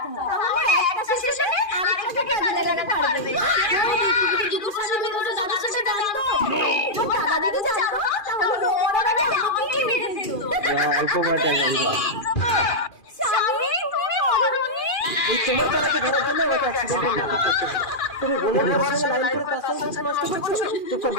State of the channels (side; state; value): right; late; 2.4 ms